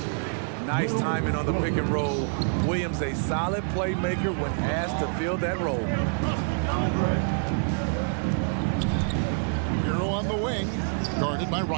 Nice timing on the pick and roll. Williams, a solid playmaker when asked to fill that role. Hero on the wing, guarded by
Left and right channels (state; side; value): silent; left; 60 dB below the other